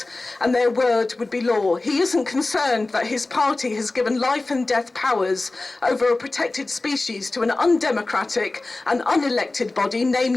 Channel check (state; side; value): quieter; right; 3.1 dB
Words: and their word would be law. He isn't concerned that his party has given life and death powers over a protected species to an undemocratic and unelected body,